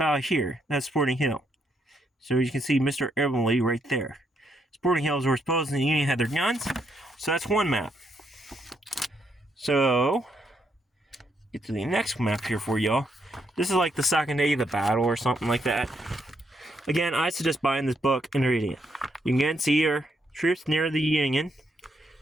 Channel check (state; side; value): normal; both; correlation 0.76